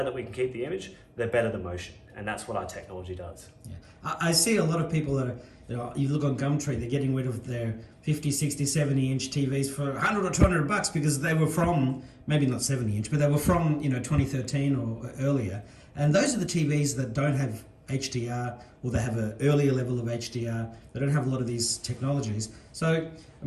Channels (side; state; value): both; identical; correlation 1.00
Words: that we can keep the image, the better the motion. And that's what our technology does. Yeah. I see a lot of people that are, you look on Gumtree, they're getting rid of their 50, 60, 70 inch TVs for $100 or $200 because they were from, maybe not 70 inch, but they were from 2013 or earlier. And those are the TVs that don't have HDR, or they have an earlier level of HDR. They don't have a lot of these technologies. So,